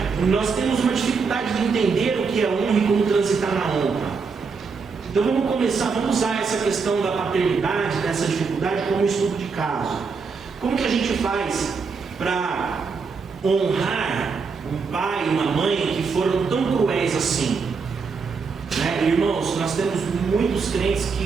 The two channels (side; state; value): left; quieter; 5.1 dB